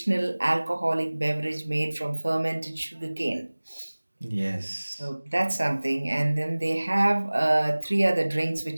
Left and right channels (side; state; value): both; inverted; correlation -1.00